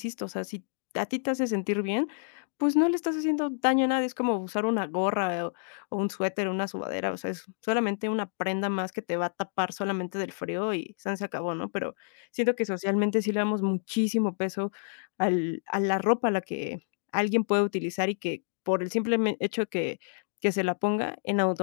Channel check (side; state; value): right; silent; digital silence